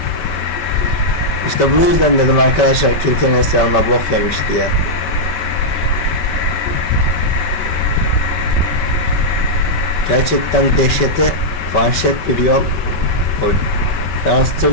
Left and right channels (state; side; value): late; right; 5.2 ms